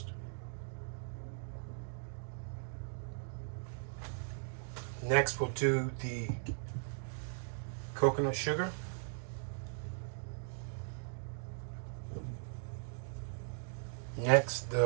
Next we'll do the coconut sugar. Next,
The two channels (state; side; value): silent; left; digital silence